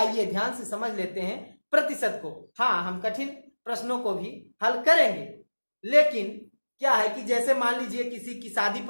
ध्यान से समझ लेते हैं प्रतिशत को। हाँ, हम कठिन प्रश्नों को भी हल करेंगे, लेकिन क्या है कि जैसे मान लीजिए किसी की शादी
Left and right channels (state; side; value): inverted; both; correlation -1.00